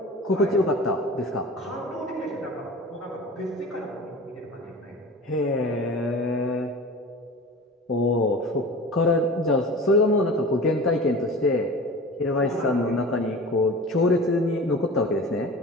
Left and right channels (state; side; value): normal; both; correlation 0.37